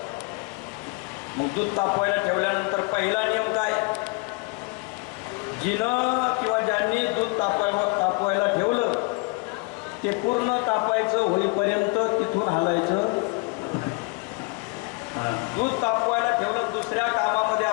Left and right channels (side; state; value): right; quieter; 29.1 dB